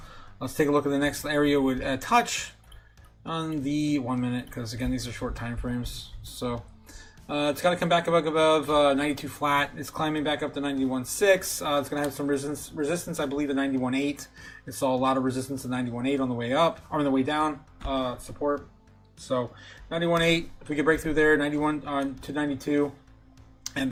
Let's take a look at the next area with touch on the 1 minute, because again these are short time frames. So. It's got to come back above 92 flat. It's climbing back up to 91.6. It's going to have some resistance, I believe, at 91.8. It saw a lot of resistance at 91.8 on the way up, or on the way down, support. So 91.8, if we could break through there, 91 to 92. And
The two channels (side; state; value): both; identical; correlation 1.00